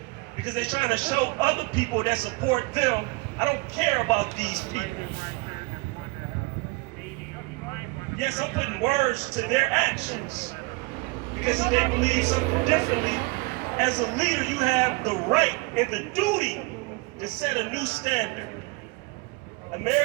Because they're trying to show other people that support them, I don't care about these people. Yes, I'm putting words to their actions. Because if they believe something differently, as a leader, you have the right and the duty to set a new standard.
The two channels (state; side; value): quieter; left; 26.1 dB